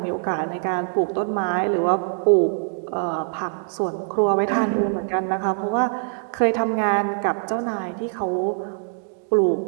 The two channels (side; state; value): left; silent; digital silence